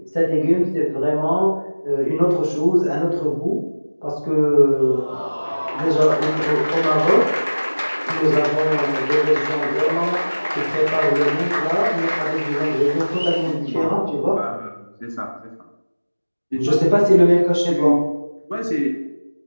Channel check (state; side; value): inverted; both; correlation -1.00